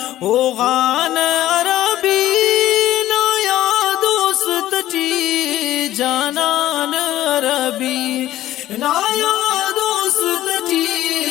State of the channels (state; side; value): quieter; right; 14.2 dB